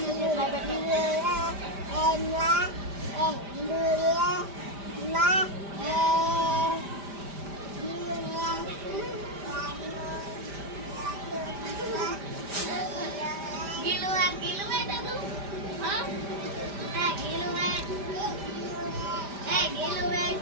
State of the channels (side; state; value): left; late; 5.0 ms